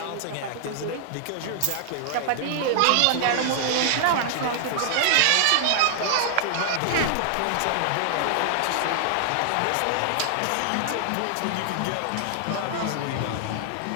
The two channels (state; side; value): different; both; correlation -0.01